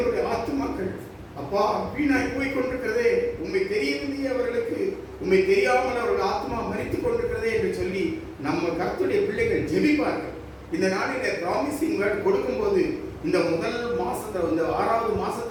ஆத்துமாக்கள் அப்பா வீணாய் போய் கொண்டிருக்கிறதே, உண்மை தெரியவில்லையே அவர்களுக்கு, உண்மை தெரியாமல் அவர்கள் ஆத்மா மரித்துக் கொண்டிருக்கிறதே என்று சொல்லி நம்ம கர்த்தருடைய பிள்ளைகள் ஜெபிப்பார்கள். இந்த நாளில ப்ராமிசிங் வேர்ட் கொடுக்கும்போது இந்த முதல் மாசத்துல, இந்த 6வது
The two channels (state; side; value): identical; both; correlation 1.00